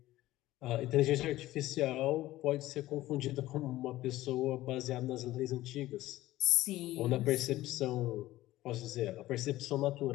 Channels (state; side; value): quieter; right; 16.0 dB